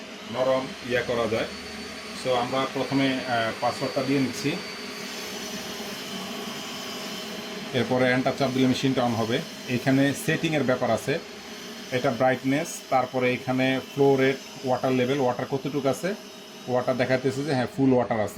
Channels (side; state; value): both; identical; correlation 1.00